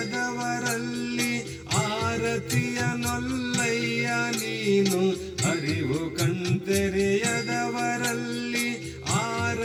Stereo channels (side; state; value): both; identical; correlation 1.00